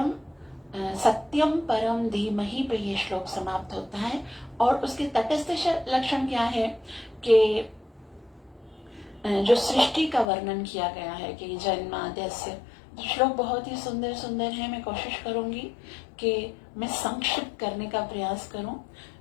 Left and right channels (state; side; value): drops out; right; at 10.3 s